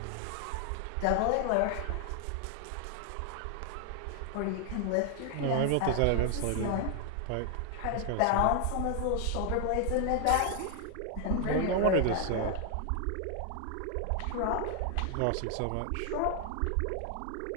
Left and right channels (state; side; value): different; both; correlation 0.00